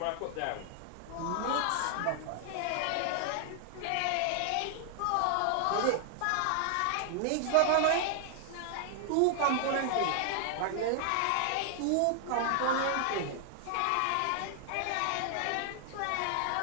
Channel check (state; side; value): different; both; correlation 0.00